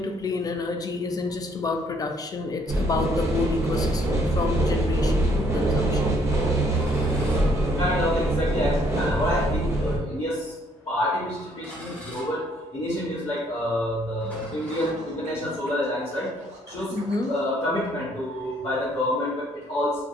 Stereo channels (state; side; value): normal; both; correlation 0.66